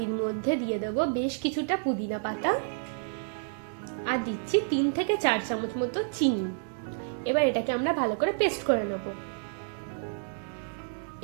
মধ্যে দিয়ে দেবো বেশ কিছুটা পুদিনা পাতা, আর দিচ্ছি 3 থেকে 4 চামচ মতো চিনি। এবার এটাকে আমরা ভালো করে পেস্ট করে নেব।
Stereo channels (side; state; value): left; silent; digital silence